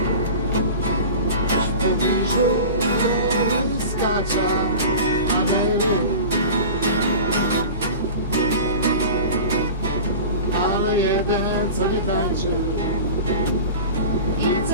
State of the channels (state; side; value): inverted; both; correlation -0.36